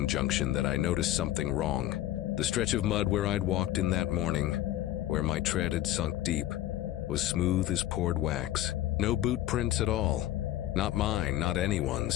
junction that I noticed something wrong. The stretch of mud where I'd walked in that morning, where my tread had sunk deep, was smooth as poured wax. No boot prints at all. Not mine, not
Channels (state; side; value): quieter; right; 13.9 dB